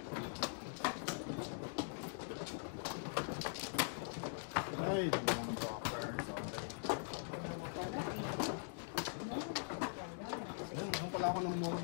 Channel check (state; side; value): silent; right; digital silence